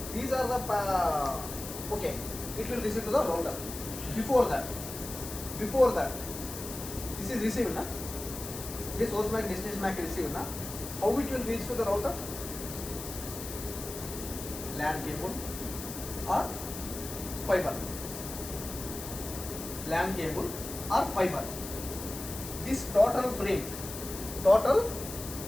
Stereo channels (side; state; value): left; noise; hiss, 9 dB below the sound